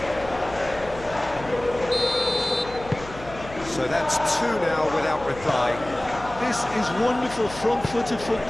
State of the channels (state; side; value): noise; left; hum, 16 dB below the sound